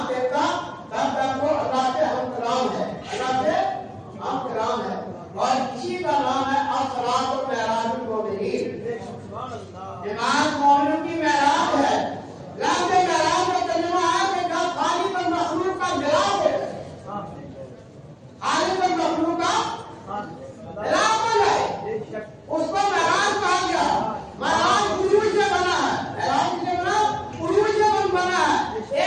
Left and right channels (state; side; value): identical; both; correlation 1.00